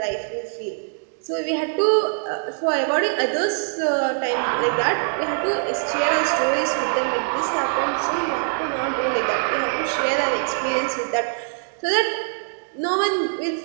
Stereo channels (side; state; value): left; silent; digital silence